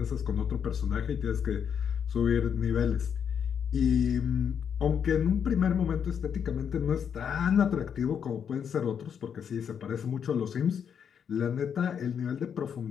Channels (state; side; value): quieter; right; 7.7 dB